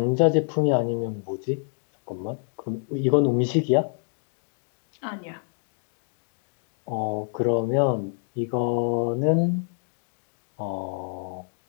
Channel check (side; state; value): right; silent; 55 dB below the other